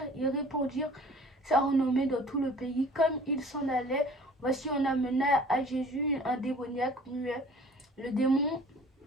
ils répandirent sa renommée dans tout le pays. Comme ils s'en allaient, voici on amena à Jésus un démoniaque muet. Le démon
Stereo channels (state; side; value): normal; both; correlation 0.49